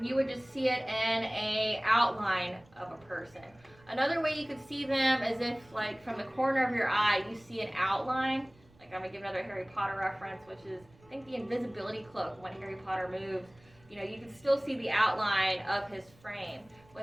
you would just see it in a outline of a person. Another way you could see them is if, like, from the corner of your eye, you see an outline, Like, I'm going to give another Harry Potter reference, which is, I think, the invisibility cloak. When Harry Potter moves, you know, you can still see the outline of his frame.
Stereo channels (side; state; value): right; noise; rumble, 28 dB below the sound